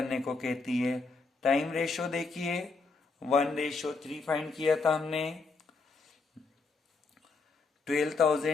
को कहती है. टाइम रेशो देखिए 1:3 फाइंड किया था हमने.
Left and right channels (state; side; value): quieter; right; 4.1 dB